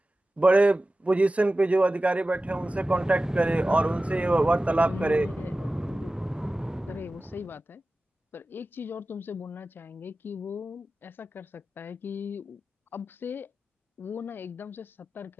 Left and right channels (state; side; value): normal; both; correlation 0.95